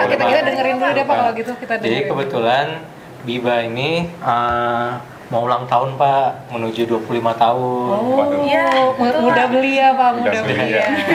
Kita Pak. dengerin dulu deh, Pak, kalau gitu. Kita Jadi dengerin. kebetulan Biba ini mau ulang tahun Pak, menuju 25 tahun. Oh, Iya, betul, mudah Pak. belia, Pak, Mudah mudah belia. belia.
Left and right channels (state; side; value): identical; both; correlation 1.00